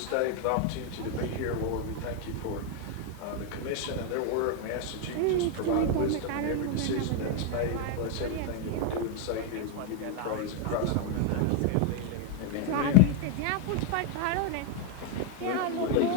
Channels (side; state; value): both; different; correlation 0.01